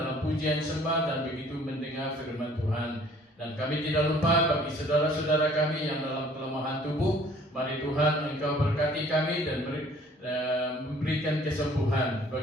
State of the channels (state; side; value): normal; both; correlation 0.55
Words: pujian sembah dan begitu mendengar firman Tuhan. Dan kami tidak lupa bagi saudara-saudara kami yang dalam kelemahan tubuh, mari Tuhan Engkau berkati kami dan memberikan kesembuhan.